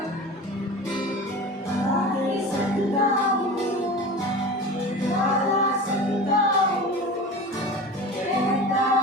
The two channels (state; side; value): normal; both; correlation 0.33